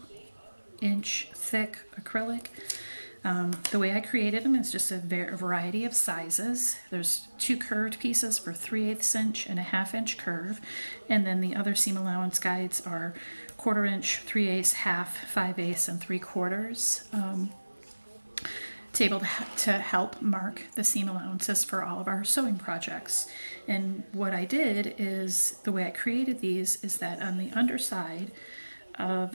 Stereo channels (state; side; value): inverted; both; correlation -1.00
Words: inch thick acrylic. The way I created them is just a variety of sizes. There's 2 curved pieces for 3/8 inch and a 1/2 inch curve. And then the other seam allowance guides are 1/4 inch, 3/8, 1/2, 5/8, and 3/4. Able to help mark the seam allowances for all of our sewing projects. And what I did is, the way I created these is that on the underside